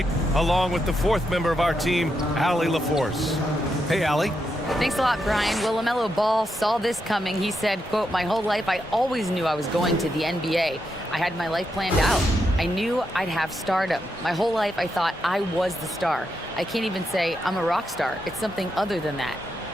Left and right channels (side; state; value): both; normal; correlation 0.83